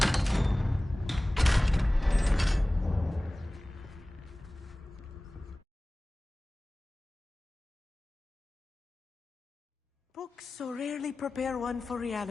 Books so rarely prepare one for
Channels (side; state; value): both; normal; correlation 0.98